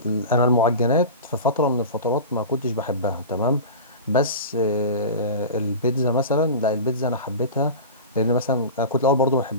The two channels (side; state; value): both; inverted; correlation -0.31